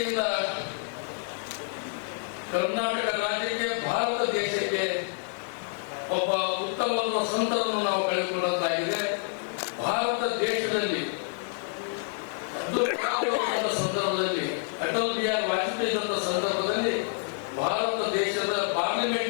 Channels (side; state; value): right; silent; digital silence